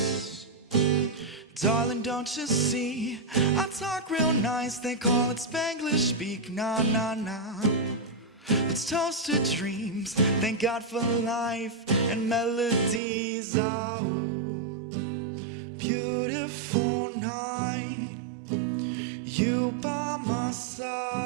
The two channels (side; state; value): left; drops out; at 13.0 s